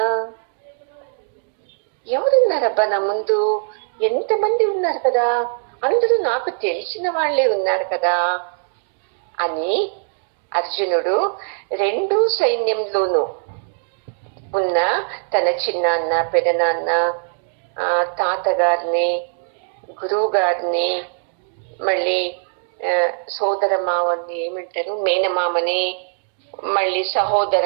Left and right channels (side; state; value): left; silent; 59 dB below the other